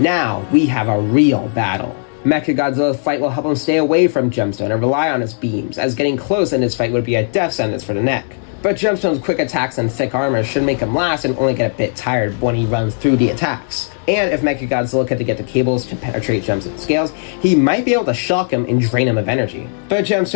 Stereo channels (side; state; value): right; silent; digital silence